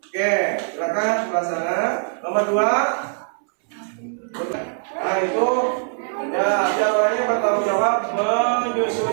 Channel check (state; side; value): silent; left; 64 dB below the other